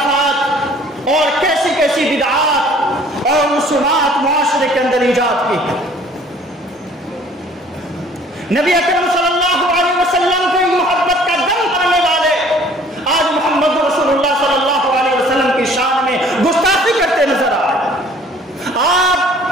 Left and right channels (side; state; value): both; normal; correlation 0.54